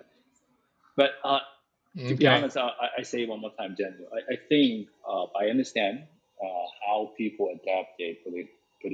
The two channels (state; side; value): identical; both; correlation 1.00